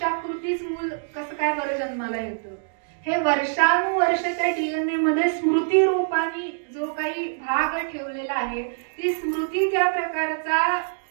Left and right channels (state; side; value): silent; left; digital silence